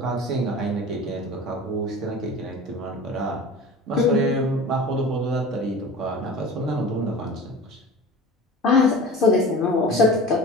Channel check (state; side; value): normal; both; correlation 0.36